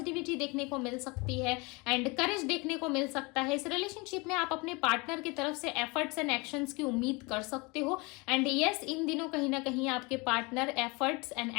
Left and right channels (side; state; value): right; quieter; 27.1 dB